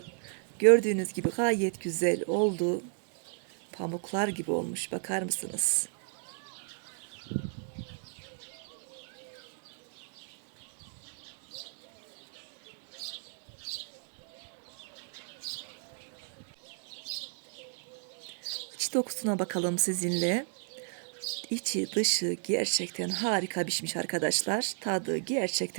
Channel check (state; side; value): silent; left; 55 dB below the other